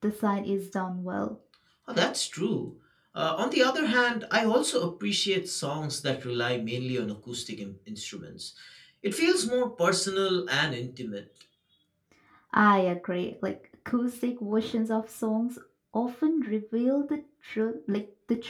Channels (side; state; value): both; identical; correlation 1.00